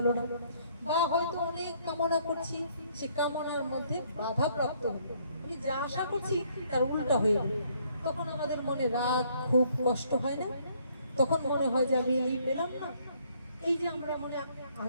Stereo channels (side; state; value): both; inverted; correlation -0.66